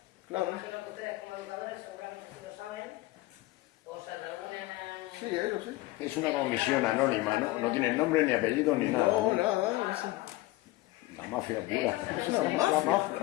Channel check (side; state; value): right; quieter; 19.1 dB